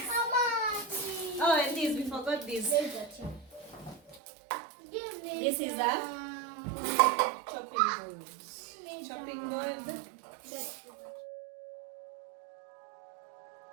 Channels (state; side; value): drops out; left; at 4.2 s